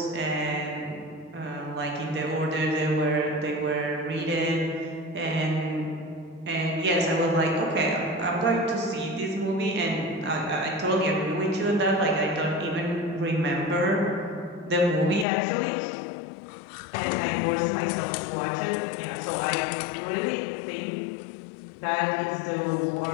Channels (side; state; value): right; drops out; at 15.2 s